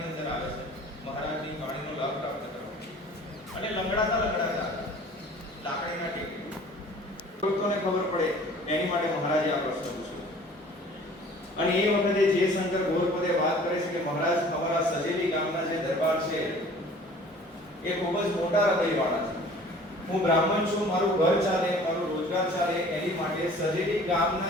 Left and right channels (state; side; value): normal; both; correlation 0.48